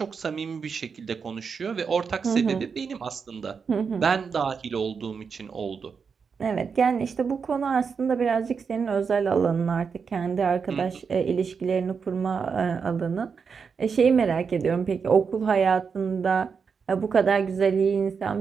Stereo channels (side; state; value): left; quieter; 5.8 dB